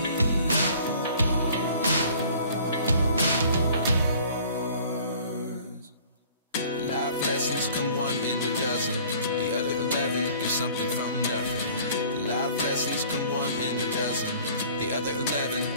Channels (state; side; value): inverted; both; correlation -0.51